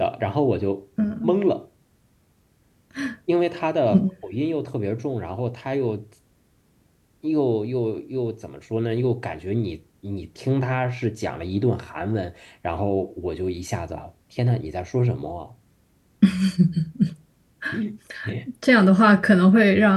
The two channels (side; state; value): both; identical; correlation 1.00